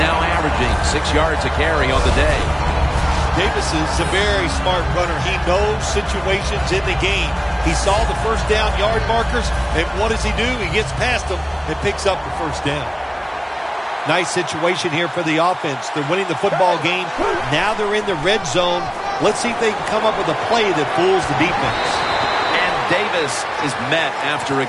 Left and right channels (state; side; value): identical; both; correlation 1.00